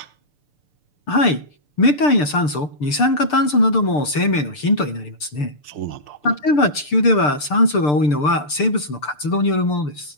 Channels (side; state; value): right; late; 6.8 ms